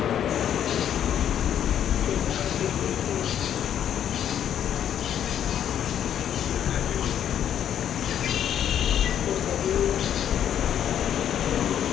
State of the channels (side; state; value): right; quieter; 9.8 dB